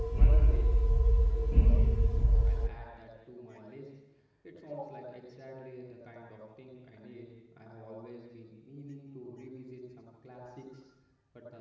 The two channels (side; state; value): both; identical; correlation 1.00